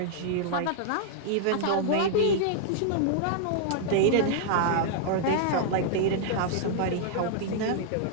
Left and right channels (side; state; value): both; different; correlation -0.01